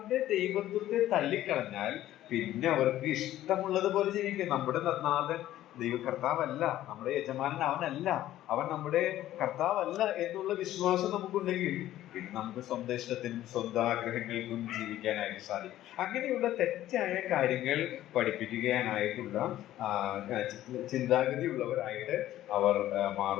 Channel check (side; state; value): right; quieter; 13.6 dB